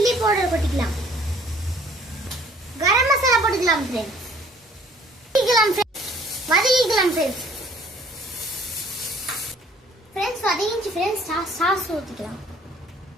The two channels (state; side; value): normal; both; correlation 0.57